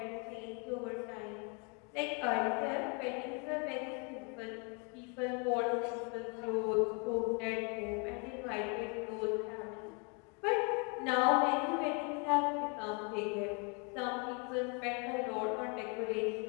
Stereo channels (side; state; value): right; quieter; 33.7 dB